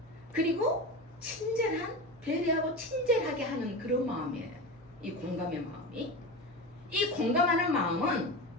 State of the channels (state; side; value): noise; left; hum, 27 dB below the sound